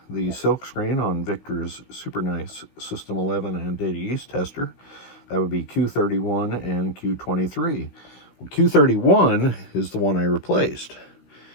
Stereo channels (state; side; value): late; right; 16 ms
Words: the silk screen on Victor's super nice System 11 and Data East tester, that would be Q31 and Q23. Well, Q31 is the one I replaced.